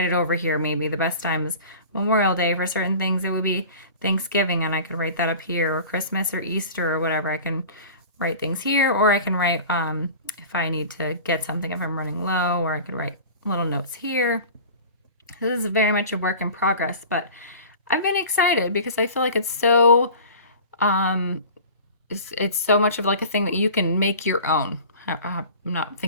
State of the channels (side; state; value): both; inverted; correlation -0.39